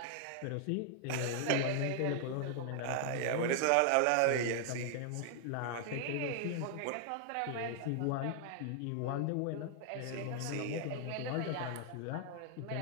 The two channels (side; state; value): both; different; correlation 0.00